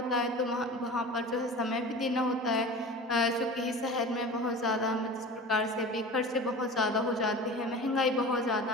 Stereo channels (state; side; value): normal; both; correlation 0.36